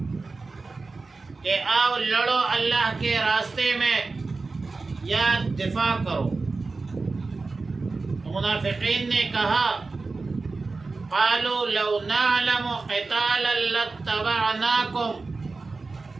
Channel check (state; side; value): quieter; left; 3.9 dB